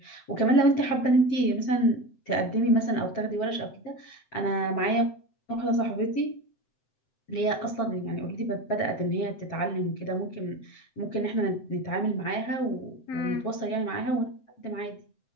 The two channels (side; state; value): right; late; 7.8 ms